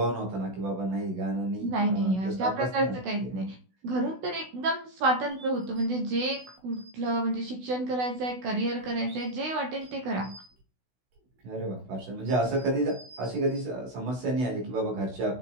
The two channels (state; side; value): late; left; 16 ms